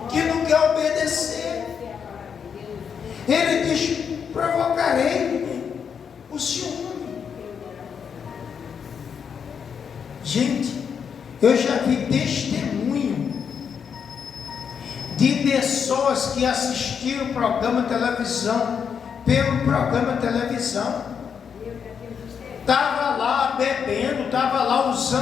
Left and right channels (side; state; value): right; quieter; 7.0 dB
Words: Que não quer obedecer. Ele diz: provocarei o ciúme. Gente, eu já vi testemunho de pessoas que assistiram o programa de televisão, pelo programa de televisão, estava lá bebendo, estava lá